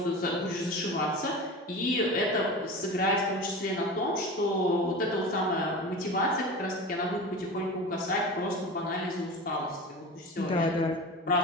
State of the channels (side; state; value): both; normal; correlation 0.31